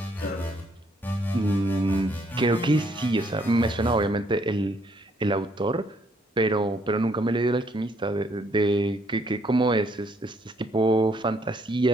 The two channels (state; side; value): normal; both; correlation 0.69